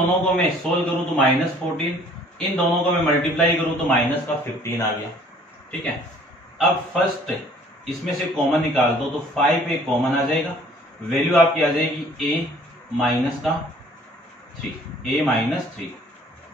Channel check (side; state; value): both; normal; correlation 0.55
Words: को मैं सोल्व करूं तो -14, इन दोनों को मैं मल्टीप्लाई करूं तो माइनस का 15 आ गया, ठीक है। अब फर्स्ट इसमें से कॉमन निकाल दो तो 5a कॉमन आ जाएगा, वैल्यू आपकी आ जाएगी a माइनस का 3, a माइनस 3,